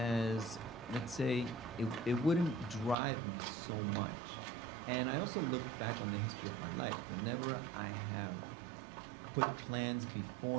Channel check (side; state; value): left; drops out; at 3.0 s